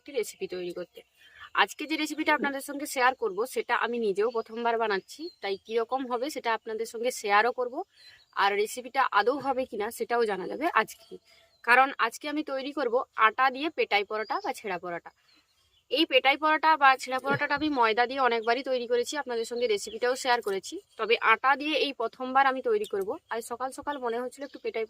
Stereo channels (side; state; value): both; identical; correlation 1.00